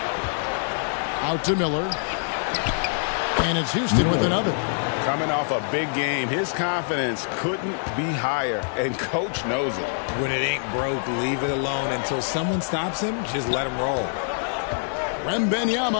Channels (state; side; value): silent; right; 62 dB below the other